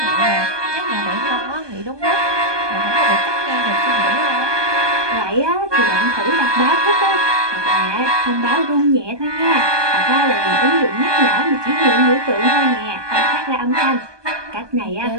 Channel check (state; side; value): late; left; 1.2 ms